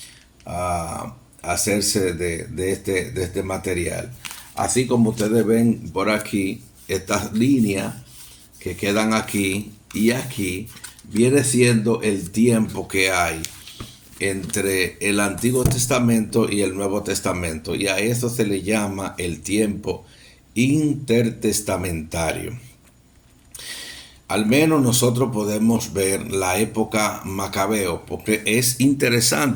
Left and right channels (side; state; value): both; identical; correlation 1.00